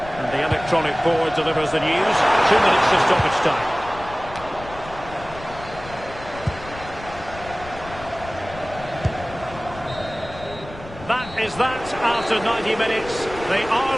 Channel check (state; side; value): noise; left; rumble, 15 dB below the sound